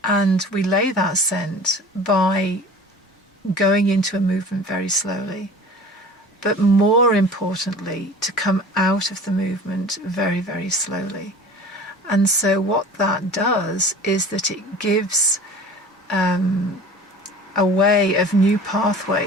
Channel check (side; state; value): both; normal; correlation 0.42